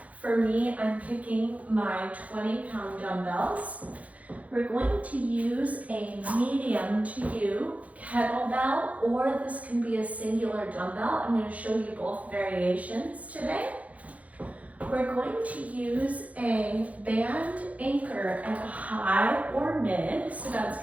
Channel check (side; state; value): left; late; 0.068 ms